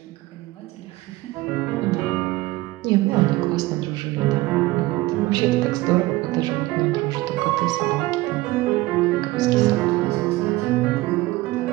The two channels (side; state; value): left; quieter; 18.9 dB